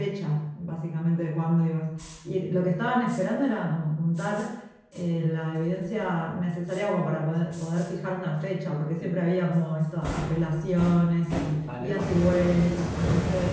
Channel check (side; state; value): both; identical; correlation 1.00